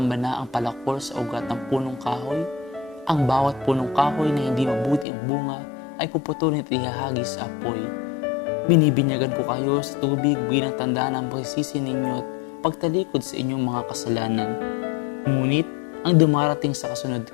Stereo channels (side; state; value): right; drops out; at 5.1 s